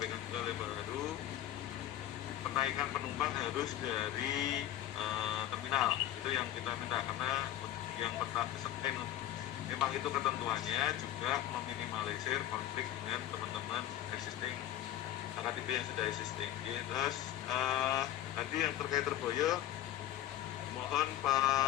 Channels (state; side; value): quieter; right; 12.9 dB